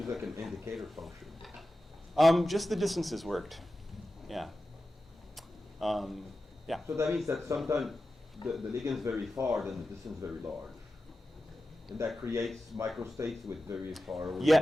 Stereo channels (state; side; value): normal; both; correlation 0.93